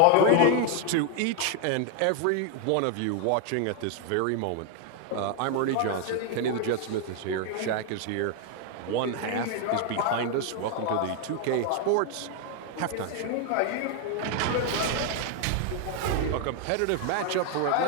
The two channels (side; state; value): both; different; correlation 0.01